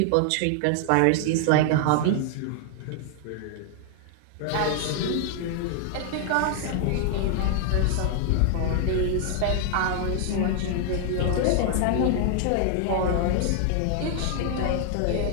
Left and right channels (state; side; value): different; both; correlation 0.00